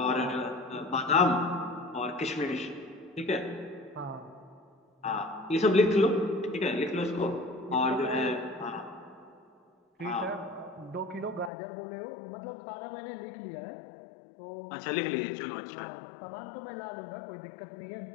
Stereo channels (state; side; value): drops out; right; at 11.5 s